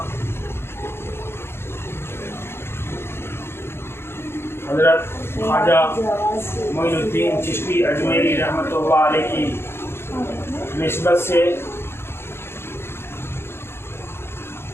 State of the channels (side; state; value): right; late; 0.12 ms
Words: हज़रत ख्वाजा मोइनुद्दीन चिश्ती अजमेरी रहमतुल्लाह अलैह की निस्बत से